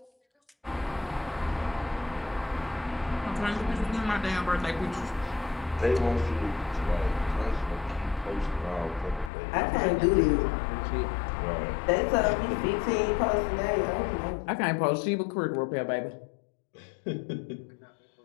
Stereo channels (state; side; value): drops out; right; at 9.3 s